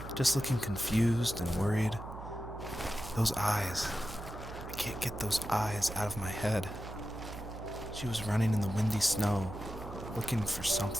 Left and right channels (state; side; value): noise; right; hum, 11 dB below the sound